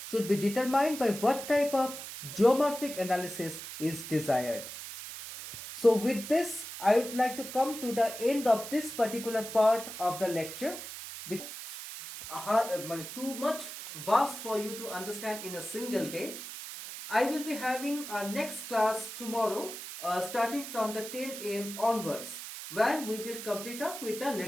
should be determined by what type of geomorphic analysis is desired. So with this, I would like to come to the end of this particular part of the lecture. Too much vast for you to understand in a single day. I will be having our next class tomorrow, starting from the 10 a.m. onwards, where we will complete off with the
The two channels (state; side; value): noise; right; hiss, 10 dB below the sound